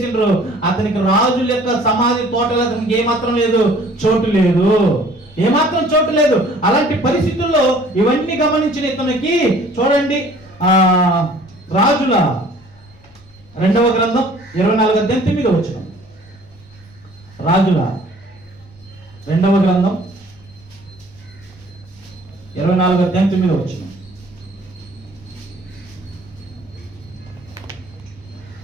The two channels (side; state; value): left; noise; rumble, 27 dB below the sound